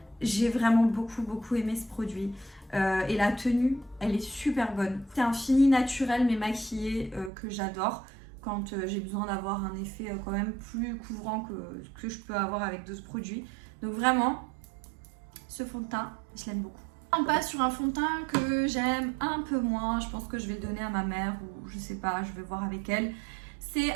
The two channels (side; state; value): left; drops out; at 7.3 s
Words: J'ai vraiment beaucoup aimé ce produit et la tenue elle est super bonne. C'est un fini naturel mais maquillé que j'adore quand j'ai besoin d'avoir un effet quand même plus couvrant que je peux avoir avec d'autres produits. Donc vraiment ce fond de teint je l'aime beaucoup. On passe sur un fond de teint que j'aime un peu moins. Je pense que je vais le donner à ma mère ou je sais pas, je vais voir avec elle. C'est